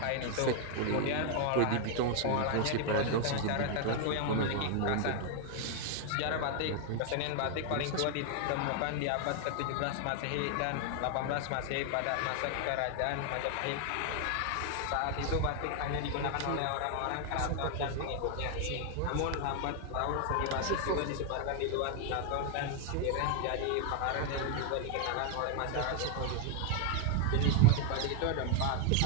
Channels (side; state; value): both; different; correlation 0.00